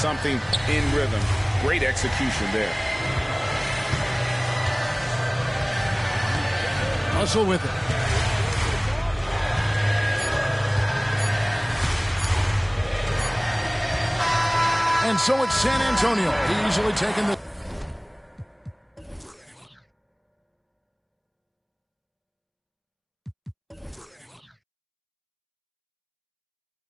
in rhythm. Great execution there. Russell with it. And so it's San Antonio easily taking the...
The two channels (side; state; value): both; identical; correlation 1.00